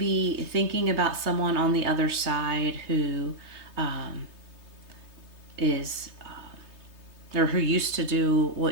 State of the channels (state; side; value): late; left; 3.2 ms